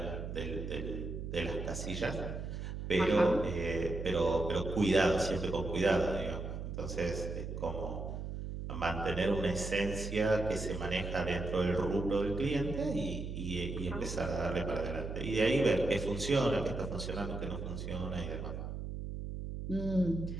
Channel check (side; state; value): right; noise; hum, 6 dB below the sound